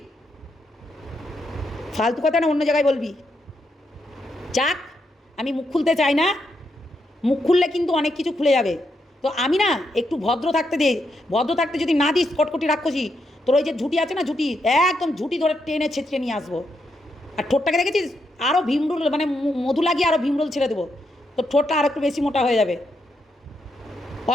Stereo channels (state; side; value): normal; both; correlation 0.81